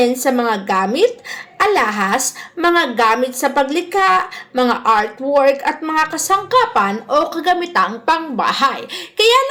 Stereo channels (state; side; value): identical; both; correlation 1.00